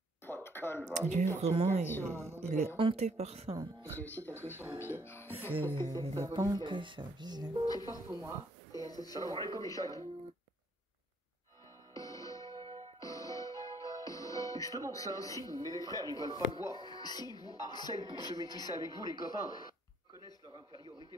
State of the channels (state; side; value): normal; both; correlation 0.67